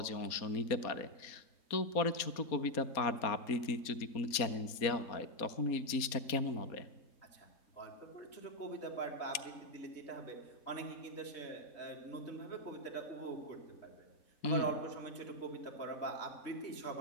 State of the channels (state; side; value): late; right; 4.2 ms